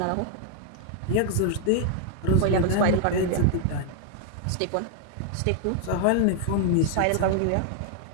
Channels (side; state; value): both; different; correlation 0.00